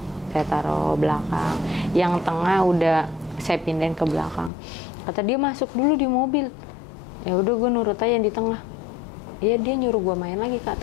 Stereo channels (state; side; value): drops out; right; at 4.5 s